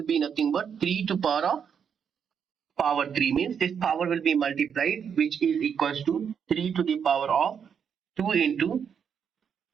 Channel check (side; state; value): left; quieter; 7.4 dB